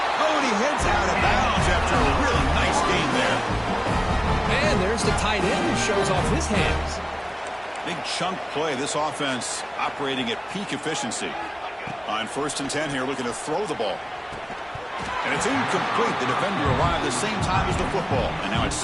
Oh, and he heads out of bounds after a really nice game there. And there's the tight end who shows off his hands. Big chunk play. This offense operating at peak efficiency. On 1st and 10 here, looking to throw the ball. And it's incomplete. The defender arrived the same time as the football. And now it's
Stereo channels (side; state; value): both; identical; correlation 1.00